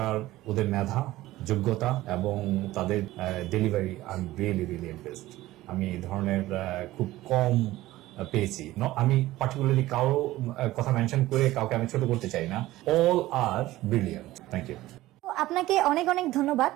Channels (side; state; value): left; quieter; 16.7 dB